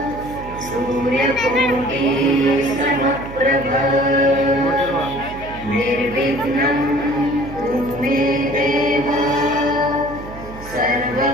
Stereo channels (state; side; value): noise; right; hum, 14 dB below the sound